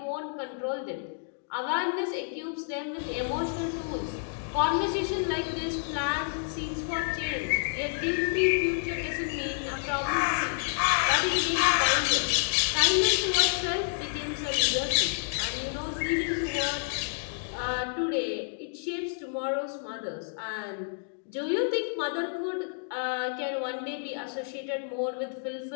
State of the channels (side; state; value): right; silent; digital silence